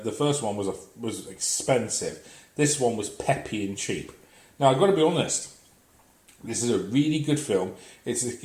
the first one was expensive, this one was peppy and cheap. Now, I've got to be honest, this is a really good film.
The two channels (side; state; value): both; identical; correlation 1.00